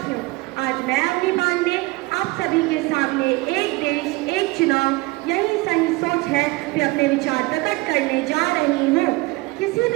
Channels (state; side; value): quieter; left; 22.6 dB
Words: आज मैं अपनी बात में आप सभी के सामने एक देश एक चुनाव यही सही सोच है कि अपने विचार प्रकट करने जा रही हूँ। किसी